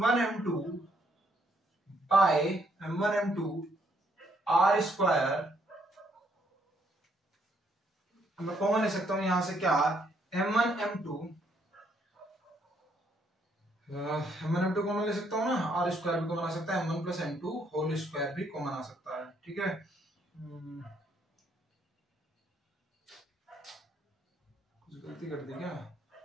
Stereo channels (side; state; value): both; normal; correlation 0.71